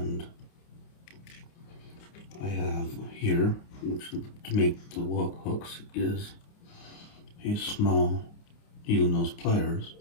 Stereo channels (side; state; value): right; late; 29 ms